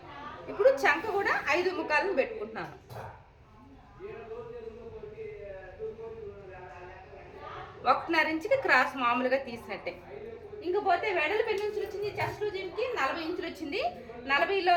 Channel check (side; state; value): both; identical; correlation 1.00